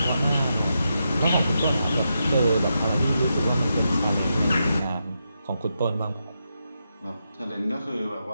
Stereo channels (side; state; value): both; inverted; correlation -0.85